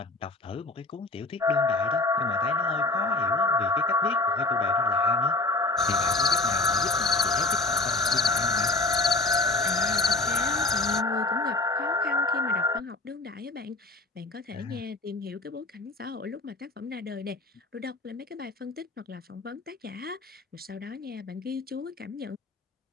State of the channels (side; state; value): right; quieter; 3.1 dB